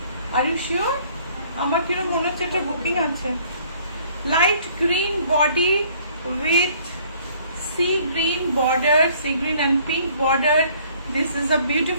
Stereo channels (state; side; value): inverted; both; correlation -0.59